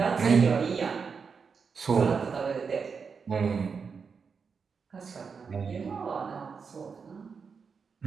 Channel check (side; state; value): left; quieter; 5.6 dB